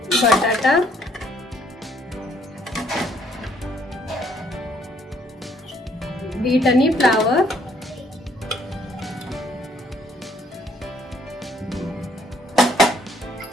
बटाटा, बीट आणि फ्लावर,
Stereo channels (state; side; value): normal; both; correlation 0.65